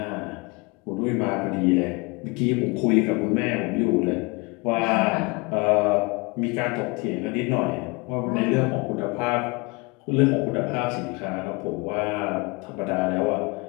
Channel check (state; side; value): quieter; right; 28.0 dB